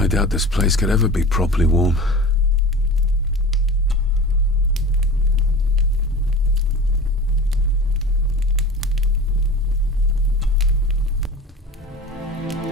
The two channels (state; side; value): normal; both; correlation 0.35